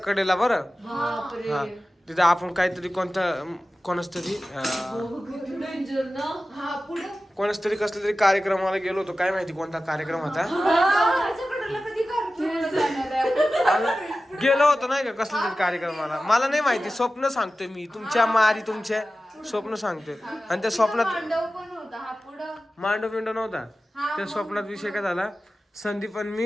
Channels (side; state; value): both; normal; correlation 0.95